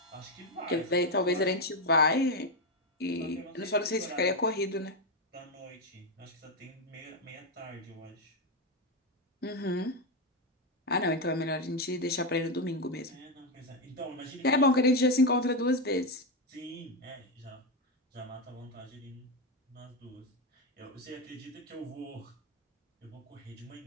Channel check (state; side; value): normal; both; correlation 0.08